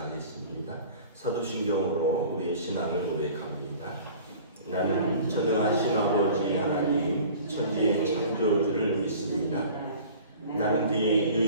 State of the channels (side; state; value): both; inverted; correlation -0.44